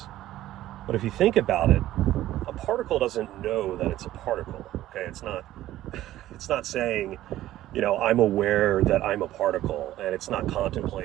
But if you think about it, a particle doesn't know that it's a particle. Okay, it's not saying, I'm aware that I'm a particle, and it's not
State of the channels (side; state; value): left; quieter; 14.3 dB